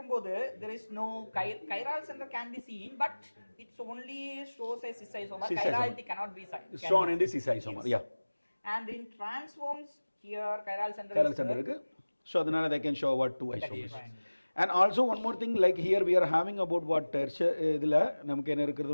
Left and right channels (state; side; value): inverted; both; correlation -1.00